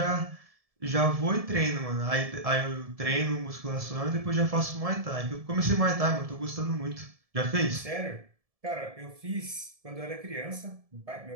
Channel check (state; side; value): late; left; 1.7 ms